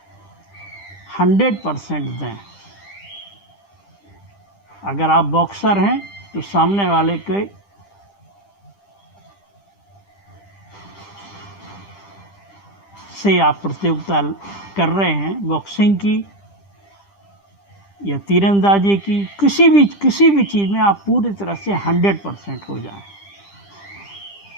100% दें। अगर आप बॉक्सर हैं तो सामने वाले के से आप प्रतियोगिता कर रहे हैं, बॉक्सिंग की या तीरंदाजी की, किसी भी चीज़ में आप पूरी तरह से 100% हो जाएं।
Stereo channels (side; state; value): right; late; 10 ms